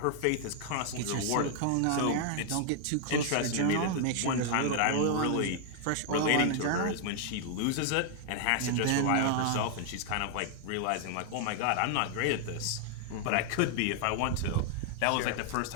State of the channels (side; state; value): both; different; correlation 0.00